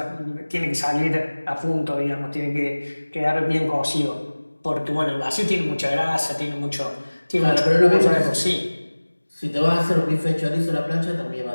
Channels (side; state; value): both; inverted; correlation -1.00